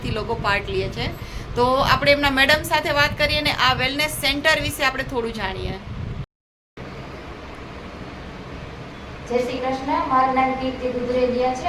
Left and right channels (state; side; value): identical; both; correlation 1.00